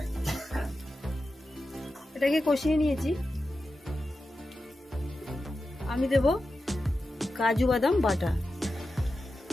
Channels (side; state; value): both; normal; correlation 0.92